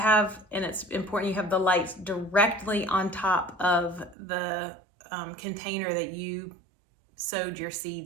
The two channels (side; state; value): left; drops out; at 4.2 s